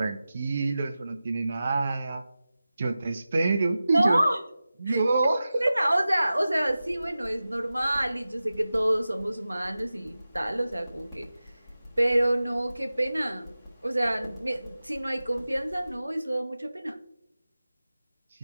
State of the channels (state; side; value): inverted; both; correlation -0.95